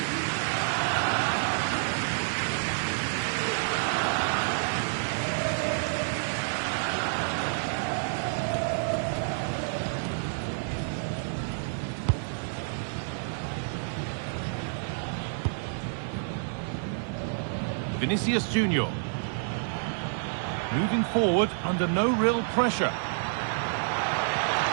Vinicius Junior. Moving forward under no real pressure.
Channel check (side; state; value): left; silent; 56 dB below the other